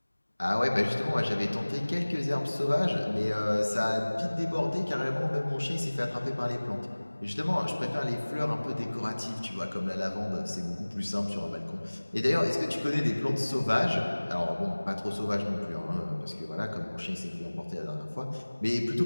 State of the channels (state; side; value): inverted; both; correlation -1.00